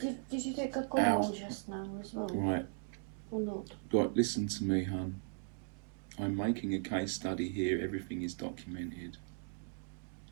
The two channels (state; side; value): silent; left; 53 dB below the other